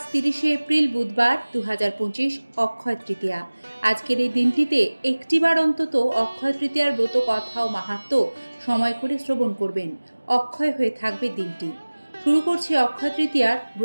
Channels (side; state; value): both; inverted; correlation -1.00